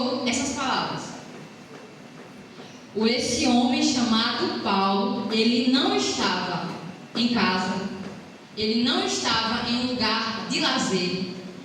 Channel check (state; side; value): identical; both; correlation 1.00